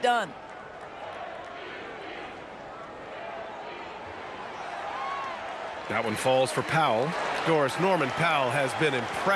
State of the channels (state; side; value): identical; both; correlation 1.00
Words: done. That one falls for Powell. Doris, Norman Powell has been